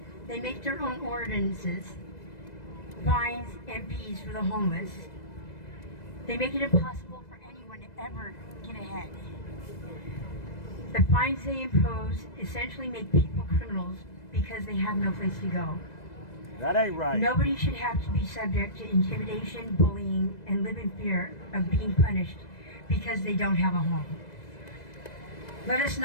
They make their own ordinances, fines, and fees for the homeless. They make it impossible for anyone to ever get ahead. The fines they impose essentially make people criminals because they have no place to go. That ain't right. Nobody should have to be subject to intimidation, bullying, and live in fear of being punished because they don't have a home. Let us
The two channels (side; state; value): right; late; 2.0 ms